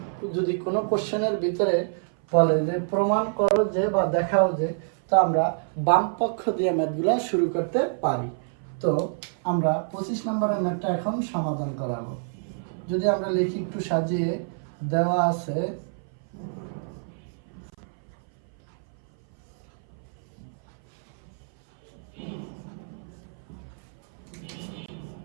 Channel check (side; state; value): left; silent; 57 dB below the other